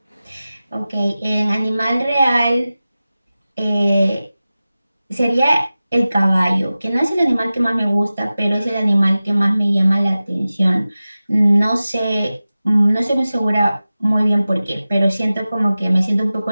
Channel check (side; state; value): both; inverted; correlation -0.96